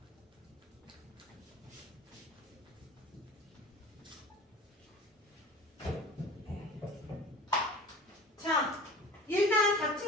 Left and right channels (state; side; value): normal; both; correlation 0.39